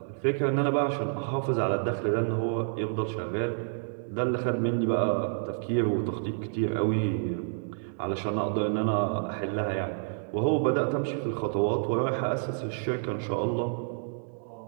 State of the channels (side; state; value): left; silent; 59 dB below the other